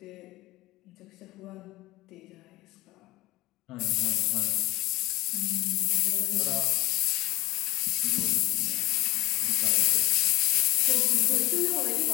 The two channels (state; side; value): quieter; right; 17.7 dB